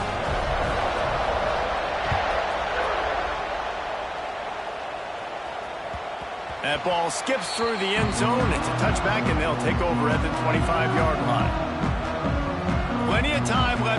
That ball skips through the end zone. It's a touchback, and they'll take over at the 25-yard line. Plenty of time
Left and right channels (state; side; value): identical; both; correlation 1.00